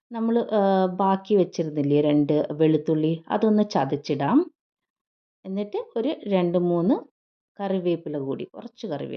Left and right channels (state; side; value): identical; both; correlation 1.00